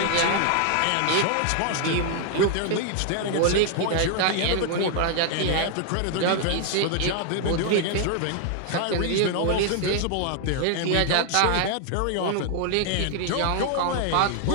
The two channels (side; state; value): both; different; correlation 0.00